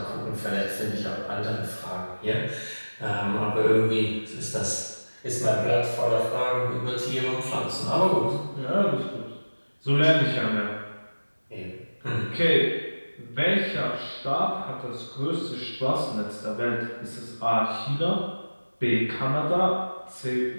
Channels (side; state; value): both; inverted; correlation -1.00